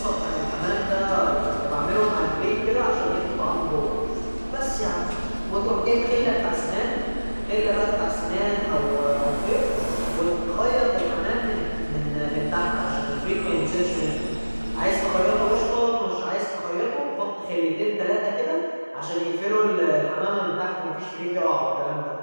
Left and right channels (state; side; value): inverted; both; correlation -1.00